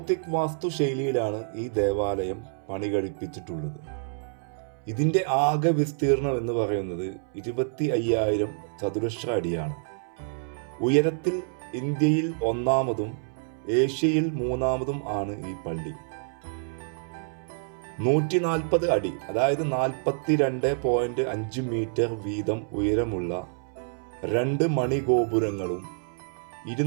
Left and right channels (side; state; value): left; silent; 60 dB below the other